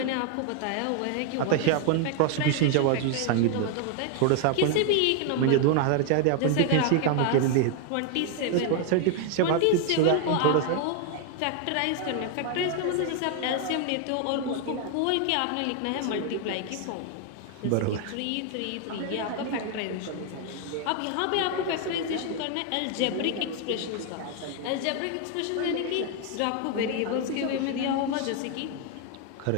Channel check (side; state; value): both; different; correlation 0.00